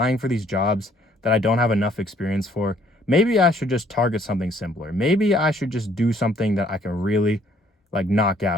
for these jobs that I don't have enough experience for? Maybe I should just target something simpler. Maybe I should just do something that I can really like knock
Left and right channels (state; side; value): normal; both; correlation 0.63